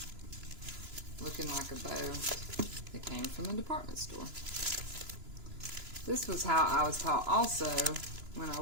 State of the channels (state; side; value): late; left; 3.0 ms